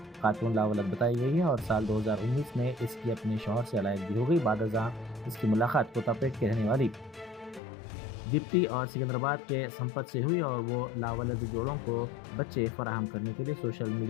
खातून लावलद बताई गई है और साल 2019 में इसकी अपने शौहर से अलहदगी हो गई। बादशाह इसकी मुलाकात कोतापेट के रहने वाली दीप्ति और सिकंदराबाद के संपत से हुई और वो लावलद जोड़ों को बच्चे फराहम करने के लिए सोशल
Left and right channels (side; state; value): right; drops out; at 7.6 s